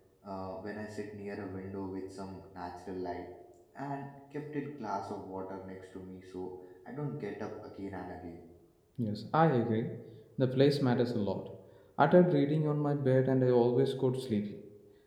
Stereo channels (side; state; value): both; identical; correlation 1.00